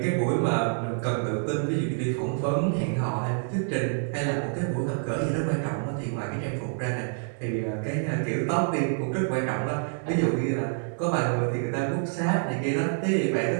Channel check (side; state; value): left; silent; 60 dB below the other